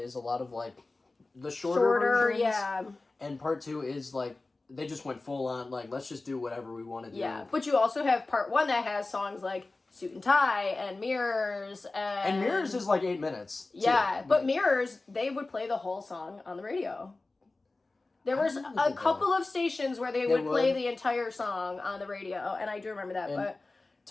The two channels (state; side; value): quieter; right; 3.3 dB